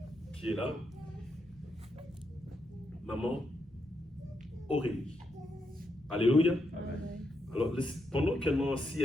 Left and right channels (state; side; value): normal; both; correlation 0.81